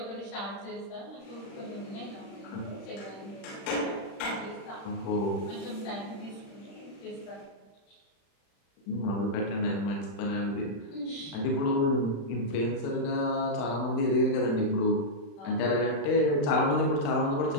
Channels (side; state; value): right; late; 35 ms